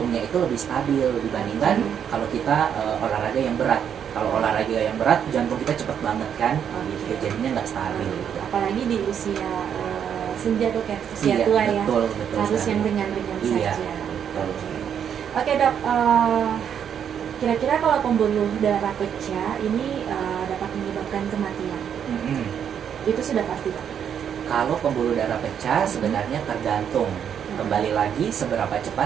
itu lebih stabil dibandingkan kalau kita olahraga yang berat. Kalau olahraga yang berat, jantung kita cepet banget kan, gitu. Jadinya nggak stabil. Apalagi di usia senja, Dok, ya, usia Iya, tua ya, betul harus sekali. yang ringan-ringan Iya, saja. betul. Oke dok, kira-kira kalau pembuluh darah pecah ini dapat menyebabkan kematian, Mm-mm. itu sudah pasti dok? Kalau pembuluh darah pecah sebenarnya tergantung. Kembali lagi seberapa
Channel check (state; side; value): quieter; left; 8.4 dB